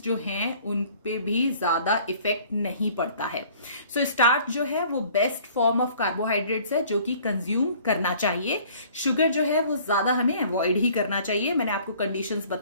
जो हैं उन पे भी ज्यादा इफेक्ट नहीं पड़ता है। सो स्टार्च जो है वो बेस्ट फॉर्म ऑफ कार्बोहाइड्रेट्स है जो कि कंज्यूम करना चाहिए। शुगर जो है वो ज्यादा हमें अवॉइड ही करना चाहिए। मैंने आपको कंडीशंस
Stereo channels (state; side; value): inverted; both; correlation -0.54